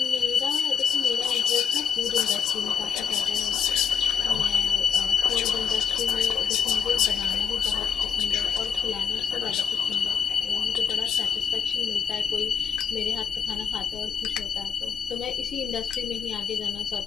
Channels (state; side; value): quieter; right; 6.8 dB